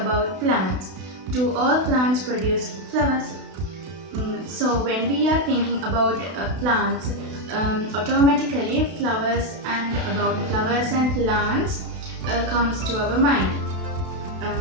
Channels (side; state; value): left; late; 32 ms